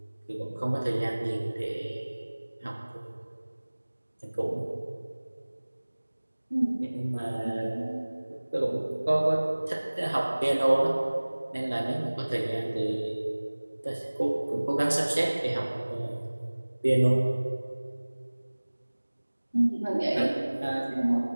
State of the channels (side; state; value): both; inverted; correlation -1.00